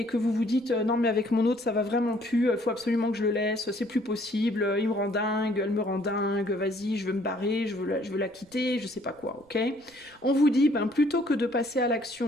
que vous vous dites non mais avec mon autre ça va vraiment plus, faut absolument que je le laisse, c'est plus possible, il me rend dingue, elle me rend dingue, vas-y je veux me barrer, je veux la quitter, je sais pas quoi, ok? On vous dit plutôt que de passer à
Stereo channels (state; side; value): noise; right; rumble, 30 dB below the sound